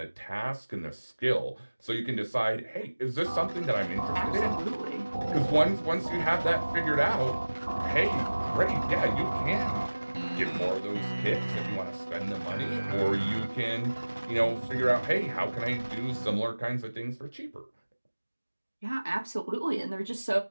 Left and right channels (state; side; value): inverted; both; correlation -1.00